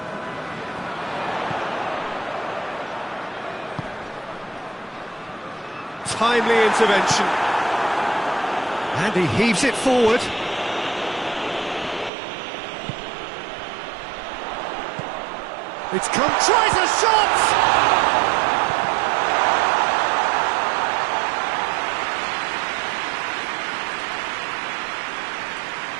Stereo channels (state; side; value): drops out; left; at 12.1 s